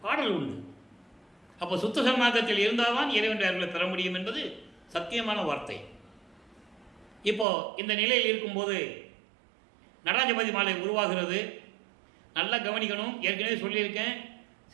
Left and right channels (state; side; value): drops out; left; at 7.5 s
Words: பாடல் உண்டு. அப்போ சுத்த சன்மார்க்கத்தில் இருந்தால்தான் இறைவனுடைய அருளை பெற முடியும் என்பது சத்தியமான வார்த்தை. இப்போ இந்த நிலையில் இருக்கும்போது நடராஜபதி மாலை உருவாகிறது. நல்லா கவனிக்கணும். ஏற்கனவே சொல்லியிருக்கேன்,